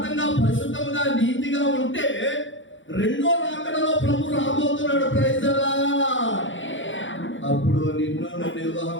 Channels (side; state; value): right; late; 0.56 ms